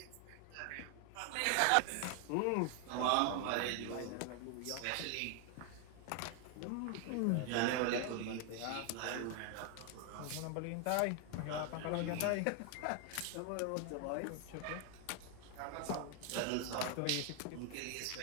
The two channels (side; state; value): both; different; correlation 0.00